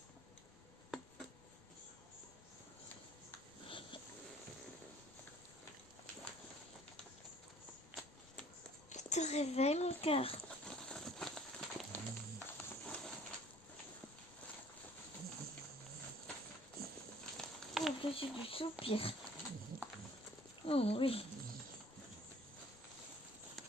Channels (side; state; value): left; noise; rumble, 26 dB below the sound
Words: Je te réveille, mon cœur. Oh, que j'ai du soupir. Oh oui.